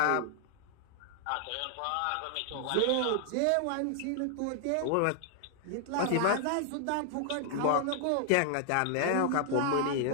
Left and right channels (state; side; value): different; both; correlation 0.00